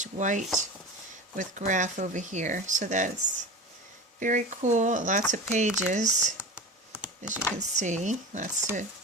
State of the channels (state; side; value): normal; both; correlation 0.30